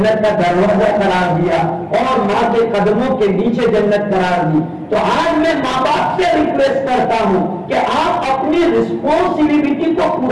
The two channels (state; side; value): identical; both; correlation 1.00